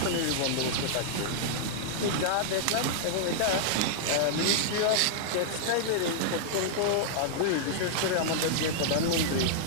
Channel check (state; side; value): different; both; correlation -0.01